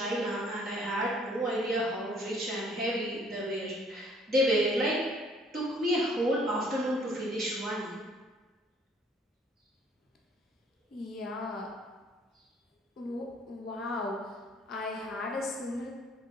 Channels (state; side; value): normal; both; correlation 0.60